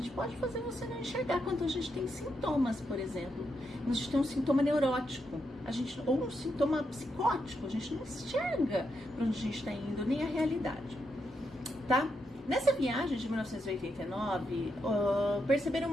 pode fazer você não enxergar quando a gente tem sintomas, por exemplo. A gente tem um sintoma neurótico, ou um sintoma psicótico, a gente não enxerga para onde a gente está indo, nem a realidade, tá? Nessa viagem de 1989, perceberam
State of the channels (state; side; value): normal; both; correlation 0.82